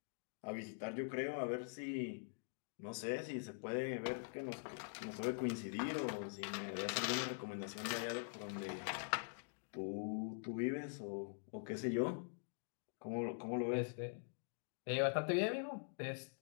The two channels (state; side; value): silent; right; digital silence